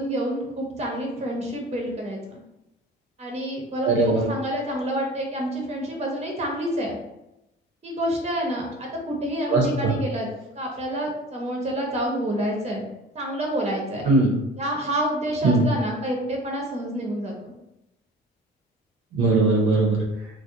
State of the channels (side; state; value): both; normal; correlation 0.41